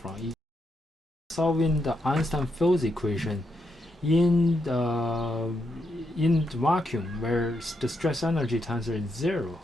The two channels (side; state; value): both; normal; correlation 0.81